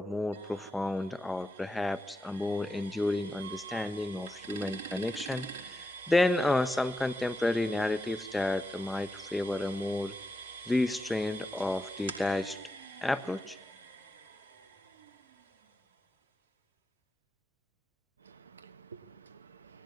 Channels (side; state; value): both; normal; correlation 0.88